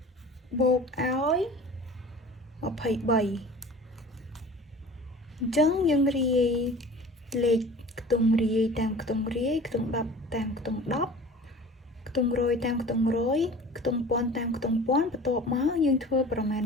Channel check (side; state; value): both; normal; correlation 0.41